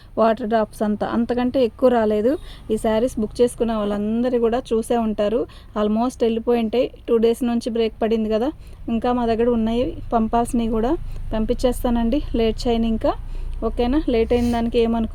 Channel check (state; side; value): identical; both; correlation 1.00